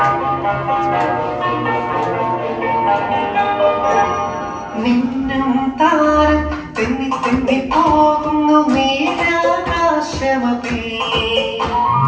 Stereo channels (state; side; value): identical; both; correlation 1.00